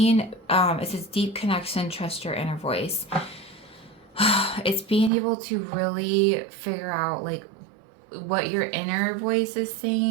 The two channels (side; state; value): left; drops out; at 5.1 s